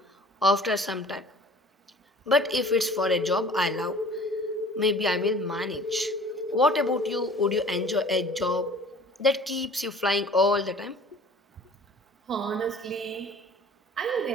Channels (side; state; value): both; normal; correlation 0.47